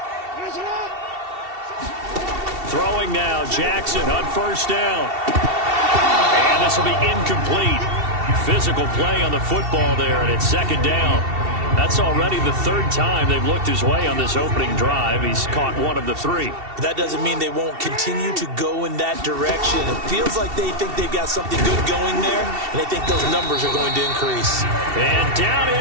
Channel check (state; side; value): late; left; 2.7 ms